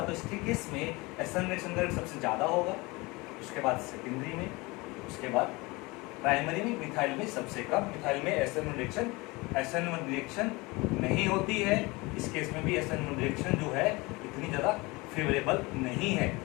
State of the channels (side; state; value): right; quieter; 24.1 dB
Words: तो इसके केस में SN रिएक्शन का रेट सबसे ज्यादा होगा, उसके बाद सेकेंडरी में, उसके बाद प्राइमरी में, मिथाइल में सबसे कम। मिथाइल में SN1 रिएक्शन नहीं होती है। इस केस में भी SN1 रिएक्शन जो है इतनी ज़्यादा फेवरेबल नहीं है,